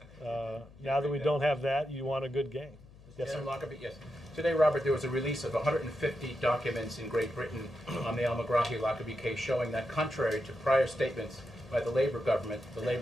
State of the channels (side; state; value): left; noise; hum, 22 dB below the sound